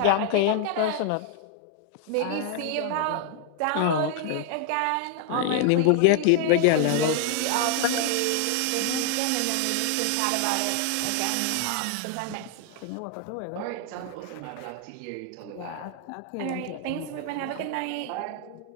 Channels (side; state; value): both; different; correlation 0.00